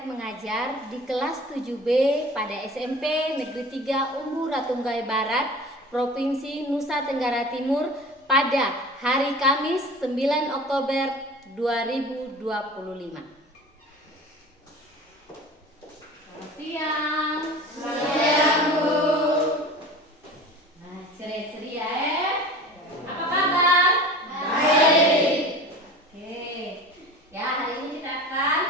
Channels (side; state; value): both; normal; correlation 0.38